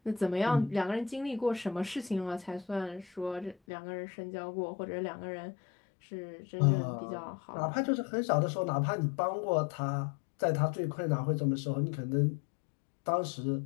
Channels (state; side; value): drops out; right; at 3.6 s